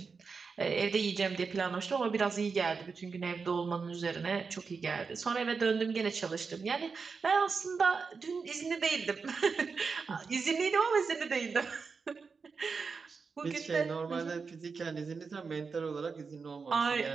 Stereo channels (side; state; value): left; quieter; 5.0 dB